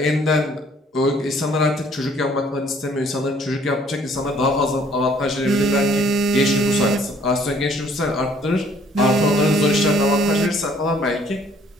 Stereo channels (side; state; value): both; normal; correlation 0.61